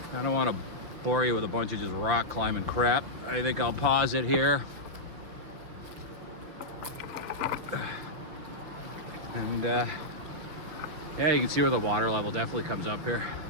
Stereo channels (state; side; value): late; left; 6.1 ms